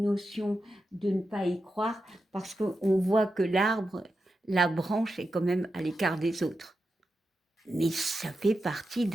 de ne pas y croire parce qu'on voit que l'arbre, la branche est quand même à l'écart des autres. Mais ça fait partie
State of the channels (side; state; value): both; normal; correlation 0.89